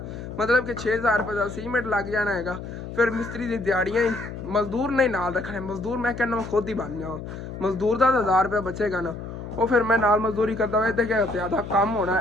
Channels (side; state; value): left; noise; hum, 9 dB below the sound